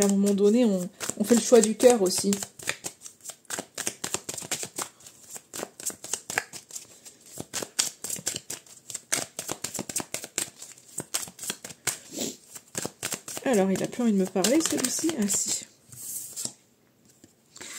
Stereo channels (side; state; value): both; identical; correlation 1.00